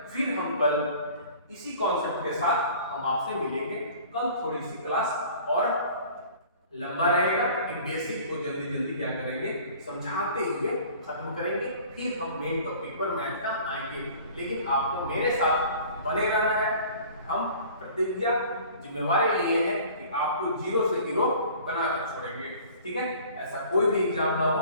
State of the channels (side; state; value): both; inverted; correlation -0.47